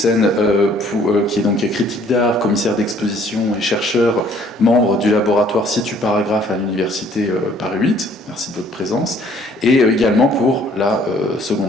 qui est donc critique d'art, commissaire d'exposition et chercheur, membre du laboratoire Situ Paragraphe à l'université Paris 8. Merci de votre présence. Et également pour la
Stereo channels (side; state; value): both; normal; correlation 0.59